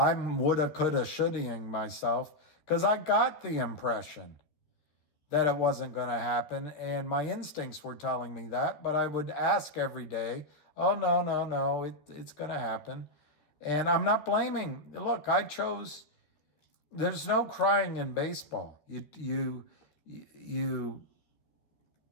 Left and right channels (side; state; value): right; late; 13 ms